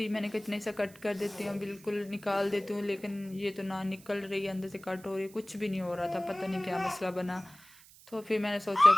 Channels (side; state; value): right; noise; hiss, 23 dB below the sound